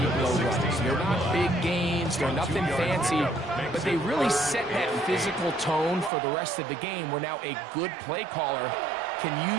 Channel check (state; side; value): drops out; left; at 6.1 s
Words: runs. They're not big gains. They're nothing fancy. But they really set that physical tone for the rest of the game where now a good play caller can